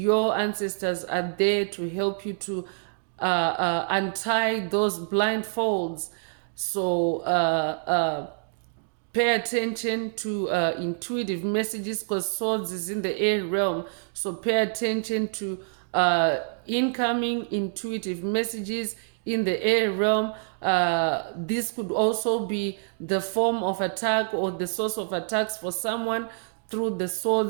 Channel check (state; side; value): silent; left; digital silence